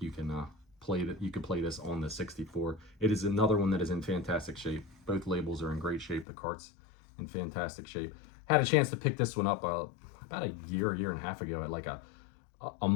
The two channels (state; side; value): drops out; right; at 6.2 s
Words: you can play this on the 64. It is another one that is in fantastic shape. Both labels are in great shape. The cart's in fantastic shape. Had a chance to pick this one up about a year and a half ago at like a